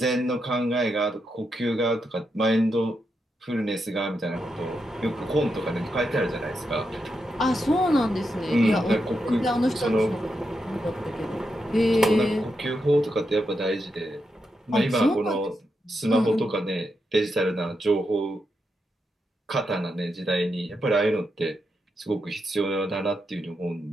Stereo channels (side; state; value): both; normal; correlation 0.85